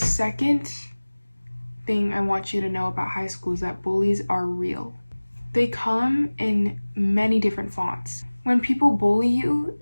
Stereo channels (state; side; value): inverted; both; correlation -1.00